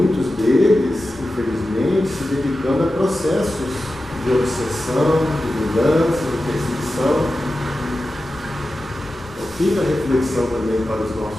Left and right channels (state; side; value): normal; both; correlation 0.93